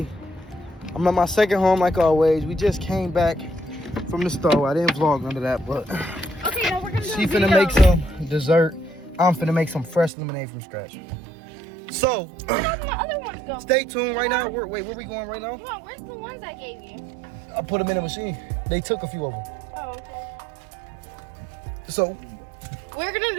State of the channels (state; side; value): drops out; left; at 10.1 s